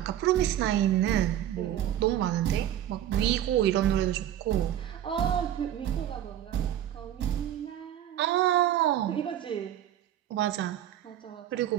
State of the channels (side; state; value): left; quieter; 11.6 dB